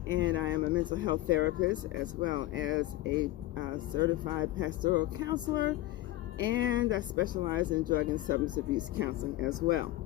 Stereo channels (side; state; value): right; quieter; 16.6 dB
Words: and I am a mental health therapist as well as a certified pastoral counselor, and I specialize in drug and substance abuse counseling as well.